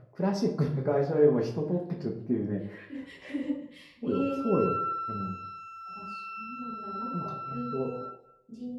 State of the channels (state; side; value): identical; both; correlation 1.00